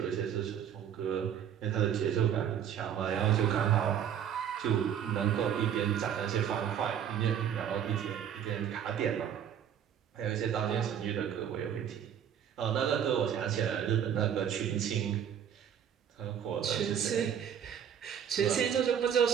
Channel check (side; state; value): left; quieter; 8.9 dB